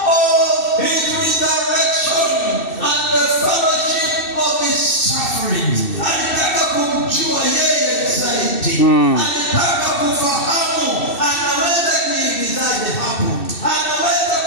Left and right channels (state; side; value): late; right; 2.6 ms